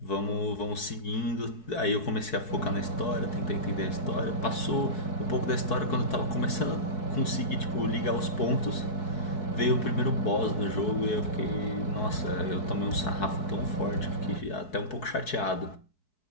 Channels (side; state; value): right; late; 4.6 ms